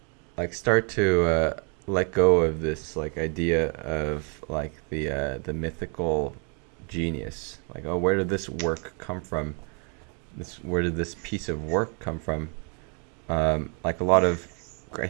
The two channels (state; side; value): quieter; left; 38.1 dB